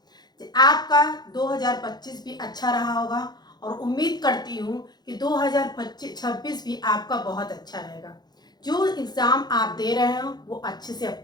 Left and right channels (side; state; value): right; late; 0.20 ms